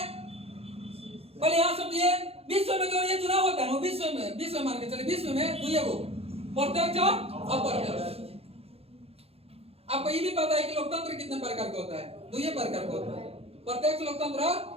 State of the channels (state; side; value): late; left; 0.29 ms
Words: पहले यहां समझिए, विश्व में जो ये चुनाव होता है ना, विश्व मान के चले, विश्व में 2 गो, प्रत्यक्ष और अप्रत्यक्ष। आपको ये भी पता है कि लोकतंत्र कितने प्रकार का होता है? 2 प्रकार का होता है, प्रत्यक्ष लोकतंत्र और